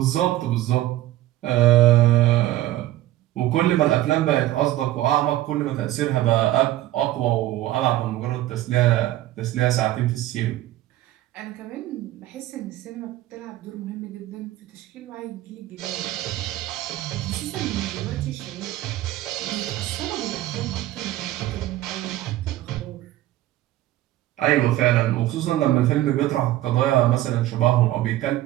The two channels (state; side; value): quieter; left; 15.1 dB